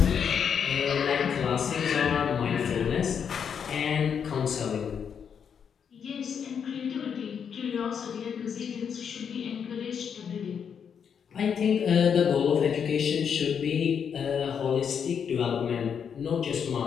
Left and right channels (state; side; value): quieter; right; 7.3 dB